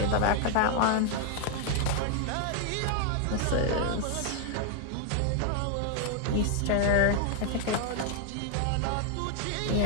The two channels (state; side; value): different; both; correlation 0.00